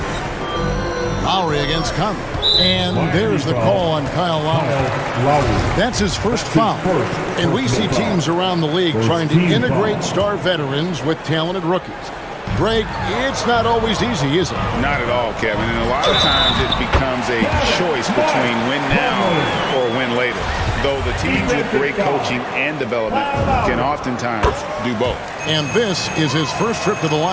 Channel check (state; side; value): identical; both; correlation 1.00